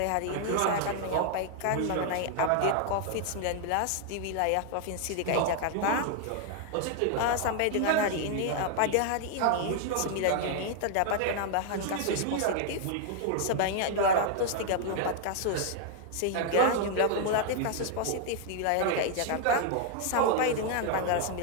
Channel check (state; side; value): different; both; correlation 0.00